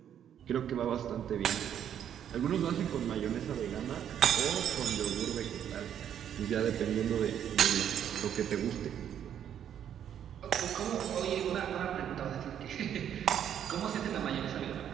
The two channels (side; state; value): left; quieter; 9.5 dB